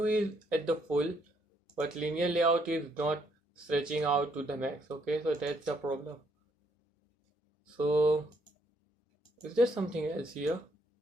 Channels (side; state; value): both; normal; correlation 0.71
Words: is at the full, but linear layout is not stretching out to the max. Okay, so that's the problem. So is there something else here?